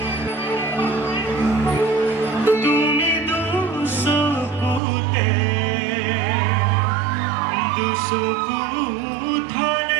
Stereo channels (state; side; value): drops out; left; at 4.8 s